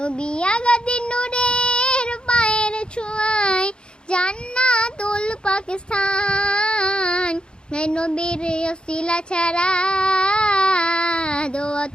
আগাদি নূরের পায়ের ছোঁয়াই জান্নাতুল পাকিস্তান। নবীর ওসিলা ছাড়া দোয়া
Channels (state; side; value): late; right; 0.051 ms